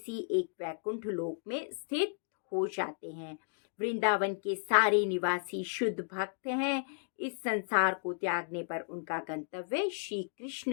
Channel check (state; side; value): silent; right; digital silence